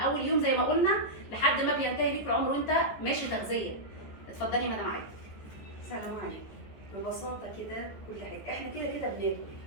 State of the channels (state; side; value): late; right; 14 ms